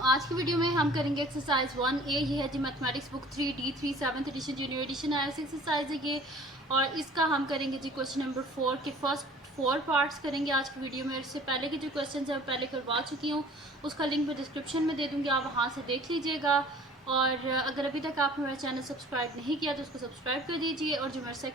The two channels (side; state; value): both; normal; correlation 0.49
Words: आज की वीडियो में हम करेंगे एक्सरसाइज 1A। ये है जी mathematics book 3D3 7th edition junior edition आया एक्सरसाइज है ये, और इसका हम करेंगे जी क्वेश्चन नंबर 4 के फर्स्ट 4 पार्ट्स करेंगे आज की वीडियो में। इससे पहले के जो क्वेश्चन है पहले करवा चुकी हूँ, उसका लिंक मैं डिस्क्रिप्शन में दे दूँगी, आप वहाँ से देख लीजिएगा। और अगर अभी तक आपने मेरा चैनल सब्सक्राइब नहीं किया तो उसको सब्सक्राइब कर दीजिए, और जो मेरा